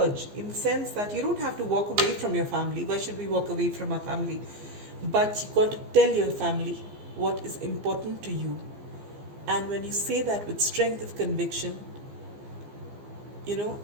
in the sense that you don't have to walk away from your family. Why should we walk away from our family? But you've got to tell your family what is important to you. And when you say that with strength of conviction,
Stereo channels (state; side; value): late; left; 15 ms